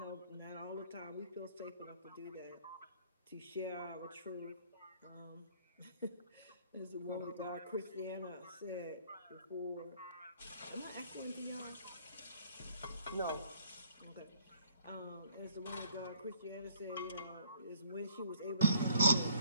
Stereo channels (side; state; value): both; inverted; correlation -0.60